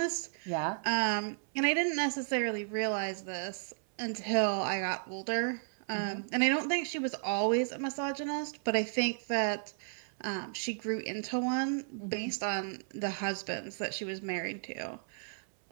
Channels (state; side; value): silent; left; 55 dB below the other